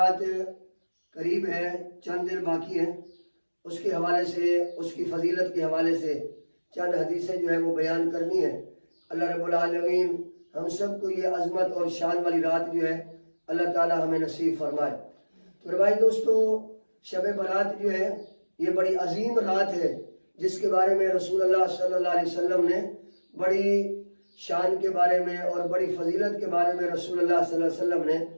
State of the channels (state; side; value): inverted; both; correlation -1.00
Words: قریب ہے، چند دن باقی ہیں۔ اس کے حوالے سے، اس کی فضیلت کے حوالے سے چند حدیثیں جو ہے وہ بیان کرنی ہے۔ اللہ رب العالمین ہم سب کو یہ عظمت اور شان والی رات جو ہے اللہ تعالی ہمیں نصیب فرمائے۔ تو بھائی دوستو، شب برات جو ہے یہ بڑی عظیم رات ہے، جس کے بارے میں رسول اللہ صلی اللہ علیہ وسلم نے بڑی شان کے بارے میں اور بڑی فضیلت کے بارے میں رسول اللہ صلی اللہ علیہ وسلم